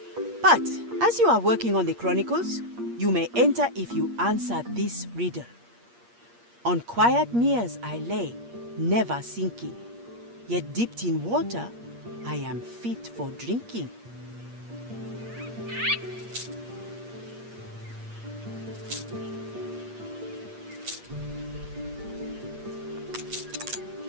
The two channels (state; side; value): late; left; 8.5 ms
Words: But as you are working on the Chronicles, you may enter if you answer this riddle. On quiet meres I lay, never sinking, yet dipped in water, I am fit for drinking.